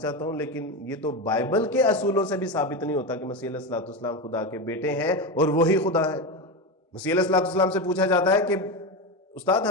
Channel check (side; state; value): both; normal; correlation 0.17